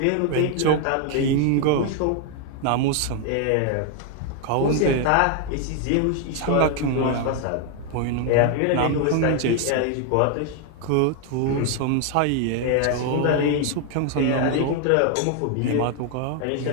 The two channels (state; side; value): different; both; correlation 0.00